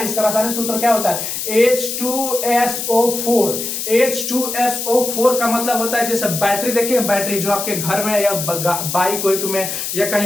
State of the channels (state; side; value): noise; left; hiss, 4 dB below the sound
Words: रासायनिक सूत्र क्या होता है, H2SO4। H2SO4 का मतलब होता है, जैसे बैटरी देखिए, बैटरी जो आपके घर में या बाइक वाइक में या